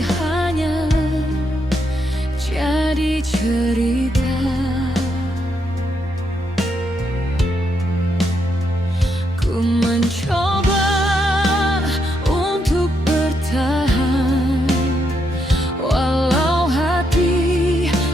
jadi cerita. Ku mencoba untuk bertahan, walau hati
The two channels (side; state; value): both; normal; correlation 0.79